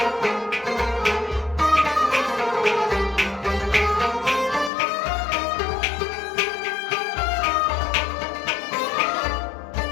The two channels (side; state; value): right; drops out; at 4.7 s